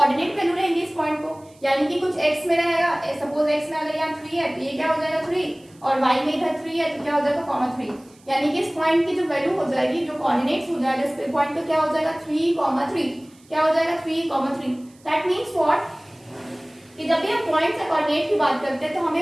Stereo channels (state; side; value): noise; right; hiss, 30 dB below the sound